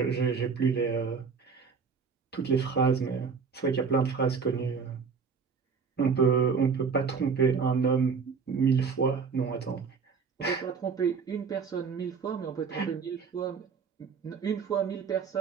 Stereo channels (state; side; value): quieter; left; 5.7 dB